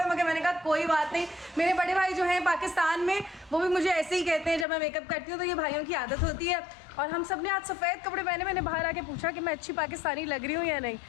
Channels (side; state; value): right; drops out; at 4.7 s